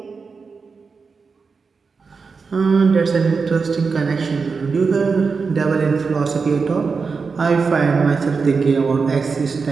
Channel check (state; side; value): quieter; left; 4.9 dB